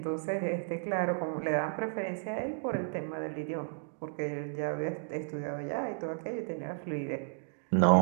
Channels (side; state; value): left; silent; digital silence